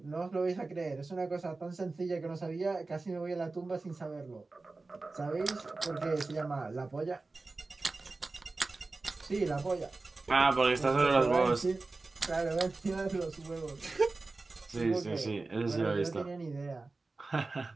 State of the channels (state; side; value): quieter; left; 3.5 dB